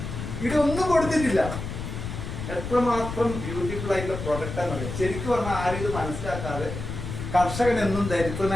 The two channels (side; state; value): left; noise; rumble, 6 dB below the sound